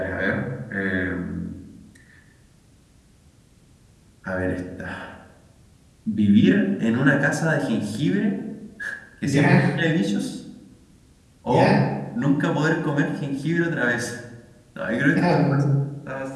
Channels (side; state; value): both; identical; correlation 1.00